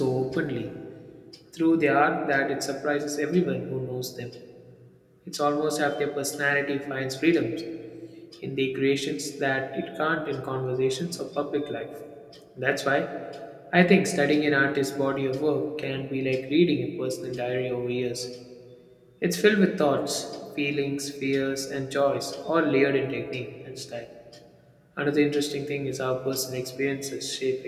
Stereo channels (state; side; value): identical; both; correlation 1.00